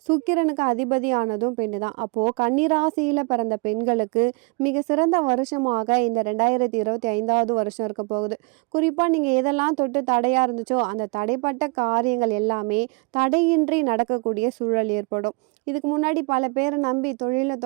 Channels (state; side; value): quieter; left; 31.3 dB